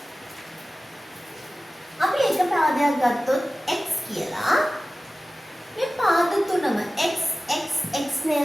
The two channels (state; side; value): normal; both; correlation 0.96